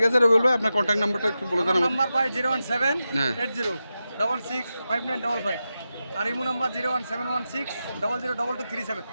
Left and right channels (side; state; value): both; inverted; correlation -0.90